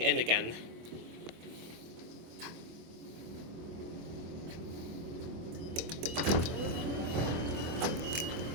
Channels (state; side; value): late; left; 25 ms